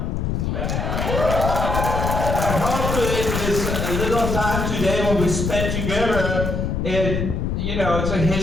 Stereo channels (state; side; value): noise; left; rumble, 1 dB below the sound